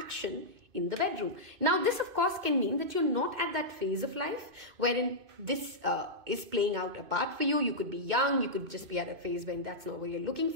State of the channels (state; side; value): late; left; 2.5 ms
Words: in the bedroom. Now, this of course can mean that you're not at that phase of life wherein this is playing out a part for you. You could be young. You could just be at a phase when that's not what you're looking